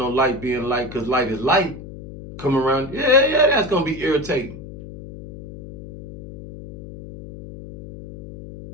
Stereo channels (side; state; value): left; noise; hum, 14 dB below the sound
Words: light being light because light is light come around. Yeah, that's going to be irritating.